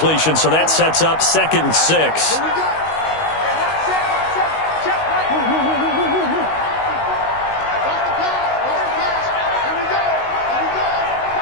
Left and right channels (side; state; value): right; late; 19 ms